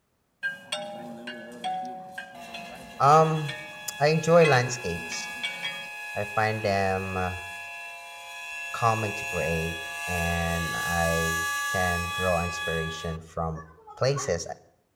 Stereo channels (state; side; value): identical; both; correlation 1.00